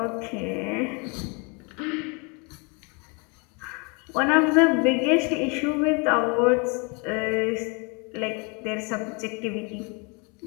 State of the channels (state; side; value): quieter; right; 32.2 dB